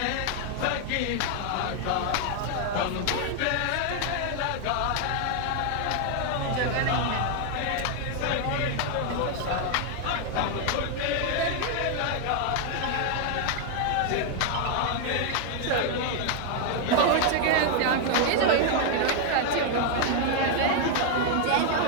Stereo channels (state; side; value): different; both; correlation 0.00